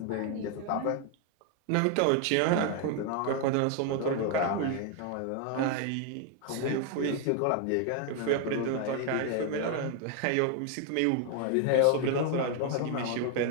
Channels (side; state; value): both; different; correlation 0.00